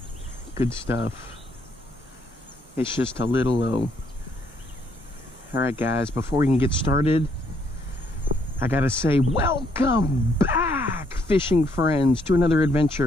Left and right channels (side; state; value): both; normal; correlation 0.71